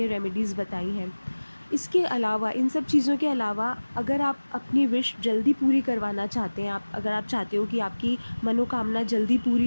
रेमेडीज़ बताई हैं। इसके अलावा, इन सब चीज़ों के अलावा, अगर आप अपनी विश जल्दी पूरी करवाना चाहते हैं, अगर आप चाहते हो कि आपकी मनोकामना जल्दी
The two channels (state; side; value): inverted; both; correlation -1.00